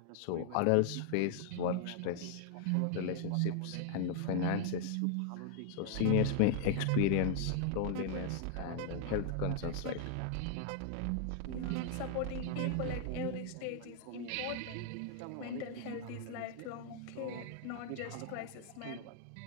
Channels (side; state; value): both; different; correlation 0.00